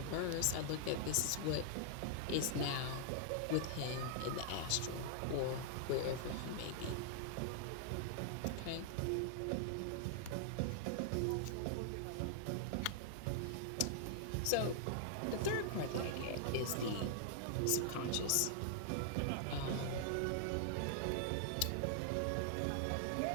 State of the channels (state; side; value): different; both; correlation -0.01